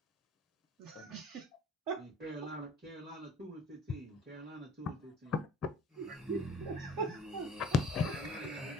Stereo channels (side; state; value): both; normal; correlation 0.50